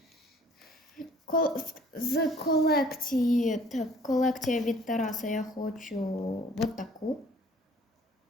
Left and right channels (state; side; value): normal; both; correlation 0.55